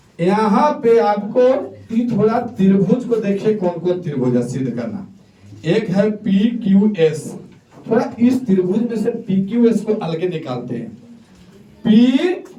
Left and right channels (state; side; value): identical; both; correlation 1.00